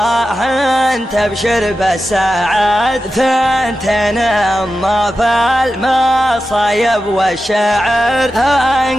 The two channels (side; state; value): both; normal; correlation 0.92